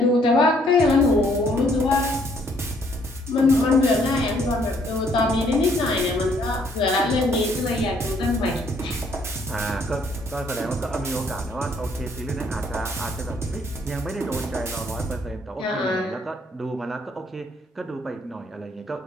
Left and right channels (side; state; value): both; normal; correlation 0.66